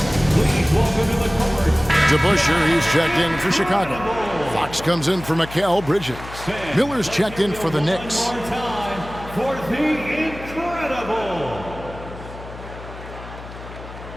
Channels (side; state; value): left; noise; hum, 14 dB below the sound